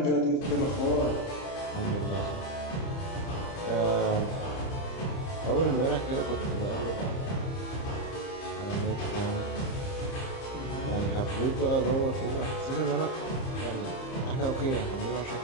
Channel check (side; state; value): right; late; 30 ms